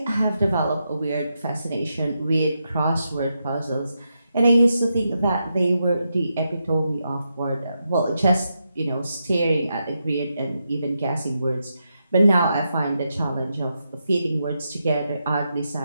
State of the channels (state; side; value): inverted; both; correlation -0.85